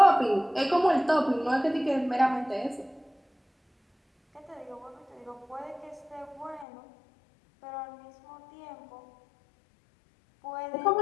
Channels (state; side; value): drops out; right; at 6.7 s